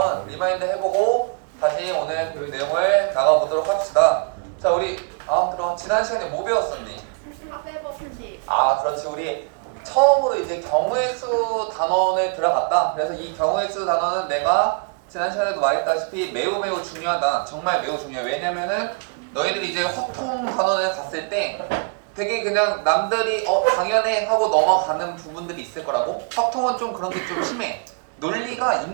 리마인드 해보고 다시 오늘 그 내용을 나가보도록 합시다. 자, 우리 들어와. 지난 시간에 뭐 배웠었니? 그렇지. 우리 처음으로 이제 경우의 수 단원에 들어갔다. 그래서 이 경우의 수 단원은 내가 지난 시간에도 말했다시피 매우 중요하다. 정말 매우 중요해. 왜냐면은 너희들이 이제 확통 단원을 갔을 때 되게 그냥 남들이 당연해 하고 넘어가는 부분들이 있을 거라고. 확통은 좀 그런 게 좀 심해. 논리가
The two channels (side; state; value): left; quieter; 37.1 dB